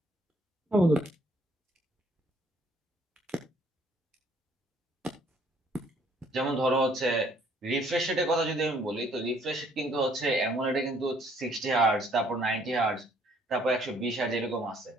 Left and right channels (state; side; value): normal; both; correlation 0.63